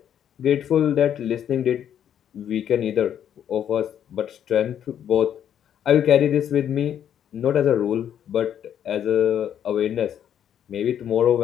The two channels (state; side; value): quieter; right; 9.6 dB